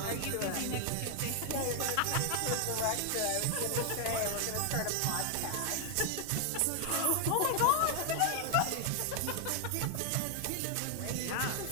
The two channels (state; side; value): different; both; correlation 0.00